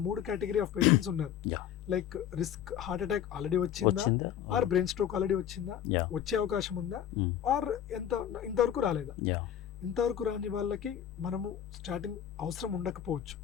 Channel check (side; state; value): right; quieter; 9.9 dB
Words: 3 కేటగిరీ ఆఫ్ పేషెంట్స్ ఉన్నారు. Like risk heart attack already వచ్చిందా, ఆర్ బ్రెయిన్ స్ట్రోక్ ఆల్రెడీ వచ్చిందా, వచ్చే అవకాశం ఉందా, ఆర్ ఇంతవరకు రాలేదా. ఇంతవరకు రాని వాళ్ళకి మనము స్టాటిన్ అవసరం ఉండకపోవచ్చు.